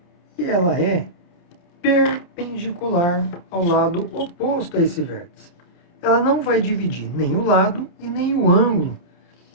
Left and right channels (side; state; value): right; late; 28 ms